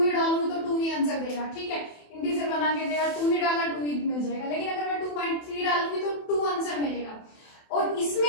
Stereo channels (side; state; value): right; late; 27 ms